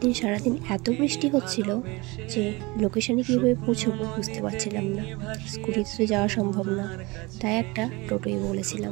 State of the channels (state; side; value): quieter; left; 24.2 dB